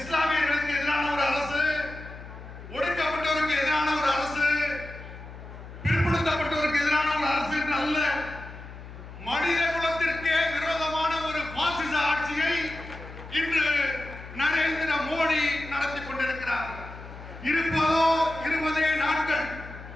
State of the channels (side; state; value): left; noise; hum, 14 dB below the sound